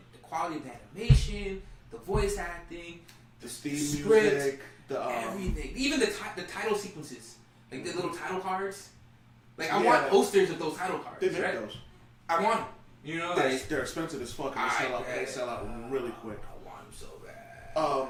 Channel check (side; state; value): both; identical; correlation 1.00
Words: the quality of the animation, the voice acting, The theme script, music, everything, even the title sequences, like the little title cards. Like I Yeah. want posters of those title cards. They make right? those. I want them. You know, like They're expensive as fuck, and they sell out really quick. I want them so bad.